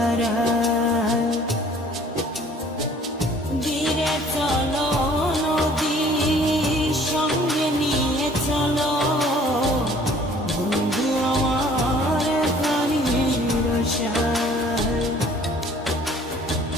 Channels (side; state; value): both; normal; correlation 0.54